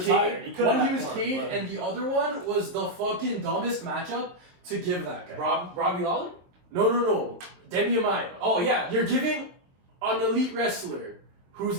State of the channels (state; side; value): late; left; 22 ms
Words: retired. Cade, He could've one he had was more, Cade, but- and the other one was the fucking dumbest matchup to give that guy. Robbie Lawler? No. Demian Maia. Oh, yeah. You're giving an elite wrestler who's